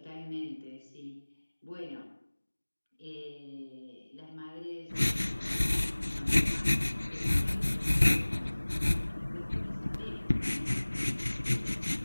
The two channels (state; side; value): inverted; both; correlation -1.00